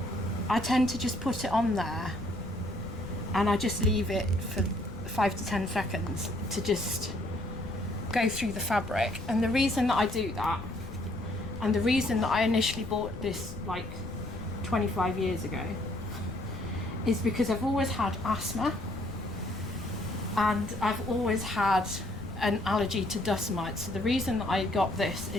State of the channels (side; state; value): left; noise; rumble, 12 dB below the sound